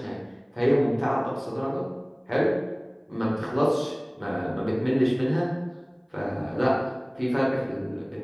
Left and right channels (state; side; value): identical; both; correlation 1.00